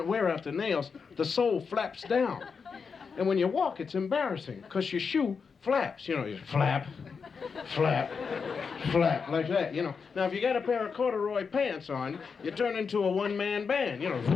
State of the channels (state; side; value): quieter; right; 5.6 dB